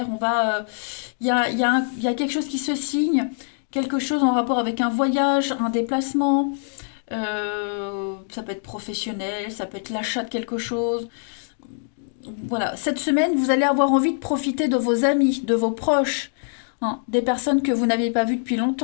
Il y a quelque chose qui se signe, quelque chose en rapport avec un voyage, un déplacement. Ça peut être professionnel, ça peut être l'achat de quelque chose. Voilà, cette semaine, vous allez avoir envie de profiter de vos amis, de vos proches, hein, des personnes que vous n'aviez pas vues depuis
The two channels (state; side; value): silent; right; digital silence